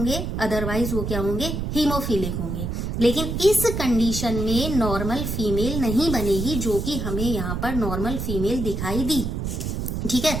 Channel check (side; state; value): right; noise; rumble, 3 dB below the sound